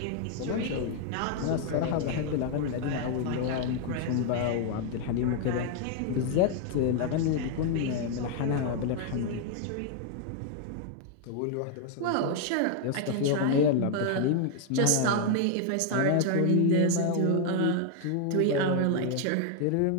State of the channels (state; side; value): different; both; correlation 0.00